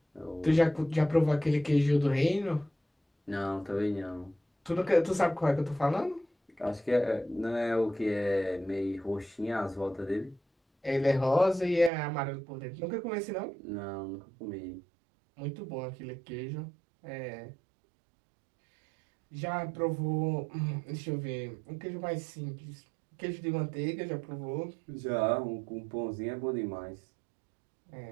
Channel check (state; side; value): drops out; left; at 11.9 s